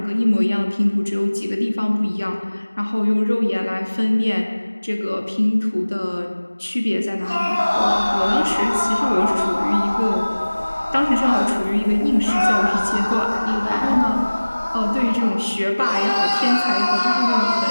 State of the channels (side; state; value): both; inverted; correlation -1.00